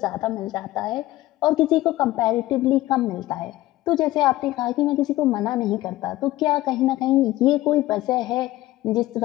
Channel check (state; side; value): quieter; right; 16.7 dB